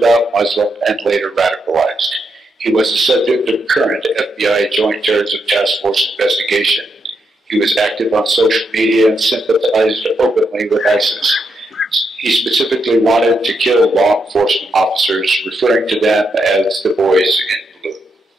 Muslim and later radicalized. He was the subject of current FBI Joint Terrorism Task Force investigation. He was active on social media and sympathized openly with ISIS. He specifically wanted to kill law enforcement officers, referring to them as the boys in blue.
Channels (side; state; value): both; normal; correlation 0.81